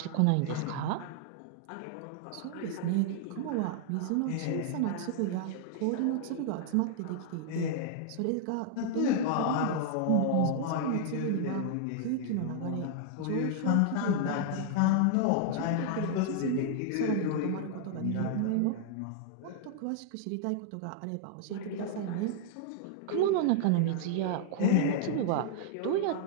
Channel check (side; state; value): both; different; correlation 0.00